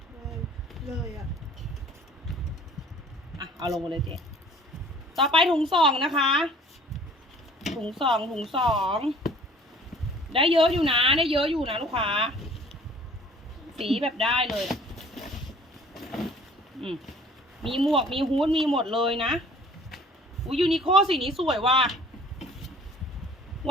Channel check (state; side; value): normal; both; correlation 0.52